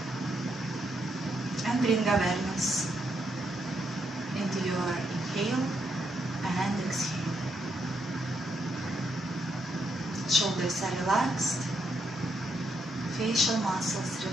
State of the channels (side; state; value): both; normal; correlation 0.78